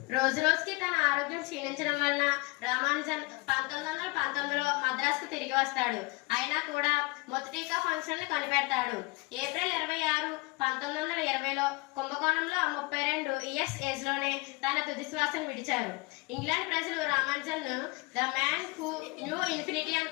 రోజు రోజుకి తన ఆరోగ్యం క్షీణించడం వలన రామానుజన్ 1919లో మద్రాసుకు తిరిగి వస్తాడు. అయినా కూడా మొదటిగా ఫంక్షన్ ని కొనిపెడతాడు. ఏప్రిల్ 26, 1920లో కుంభకోణంలో 32 ఇయర్స్ ఏజ్ లోనే తన తుది శ్వాసను విడిచారు. ఇంగ్లాండ్ ప్రజలు రామానుజన్ ను the man who knew infinity అని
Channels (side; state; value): right; quieter; 25.6 dB